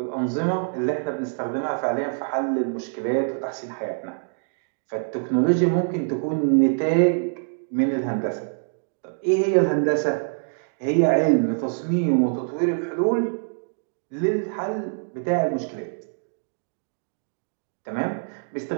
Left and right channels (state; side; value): silent; left; digital silence